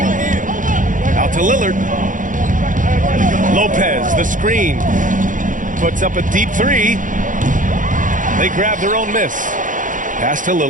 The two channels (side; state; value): left; late; 0.38 ms